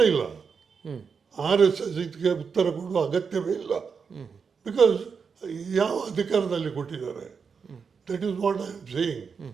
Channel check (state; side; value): quieter; left; 5.8 dB